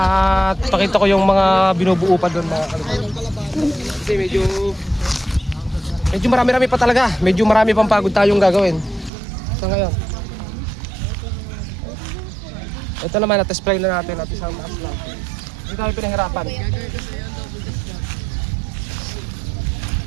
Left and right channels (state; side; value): drops out; left; at 9.1 s